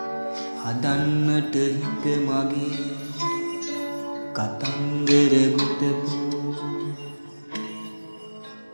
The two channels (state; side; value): inverted; both; correlation -1.00